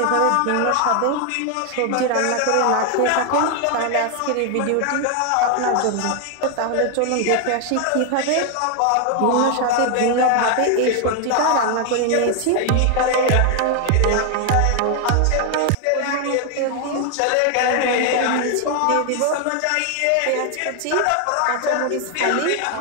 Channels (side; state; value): both; different; correlation 0.00